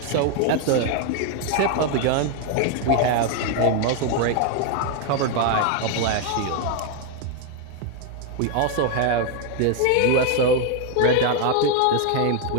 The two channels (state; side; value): different; both; correlation 0.01